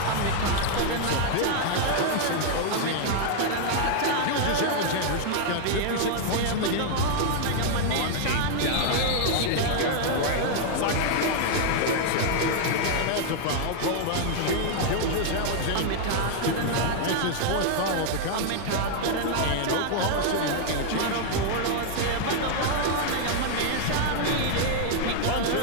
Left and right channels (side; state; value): both; different; correlation 0.00